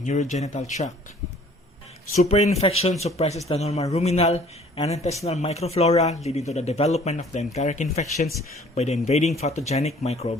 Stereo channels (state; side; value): normal; both; correlation 0.54